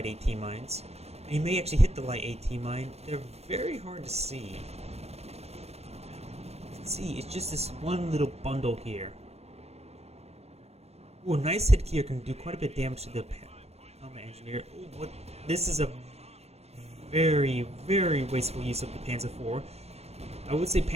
AT mines. And you may actually hit the light AT mine. They're very hard to see. You can see, it's just this one little bundle here. Ooh, a nice hit here can do quite a bit of damage to the combat engineer. Ooh, what? This is a very, very wasteful use of the Panzer IV. I would say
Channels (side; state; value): left; late; 0.31 ms